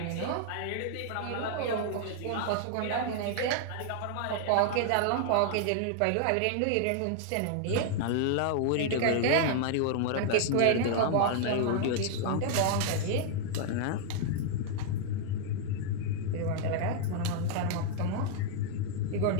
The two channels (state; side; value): different; both; correlation -0.01